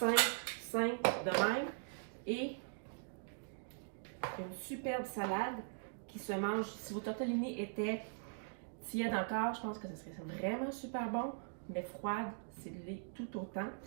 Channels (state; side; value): silent; left; digital silence